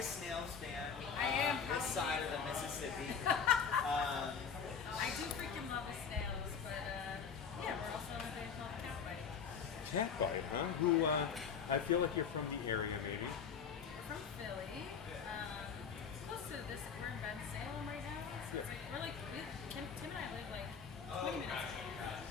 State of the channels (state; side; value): quieter; right; 6.5 dB